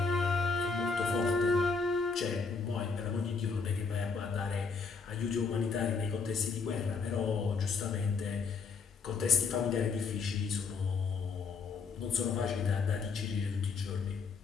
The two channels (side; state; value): right; quieter; 5.0 dB